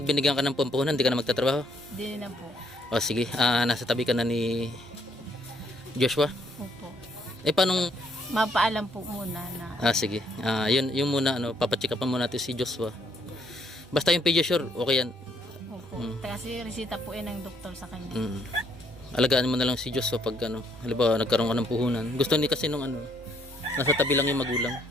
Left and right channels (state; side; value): normal; both; correlation 0.69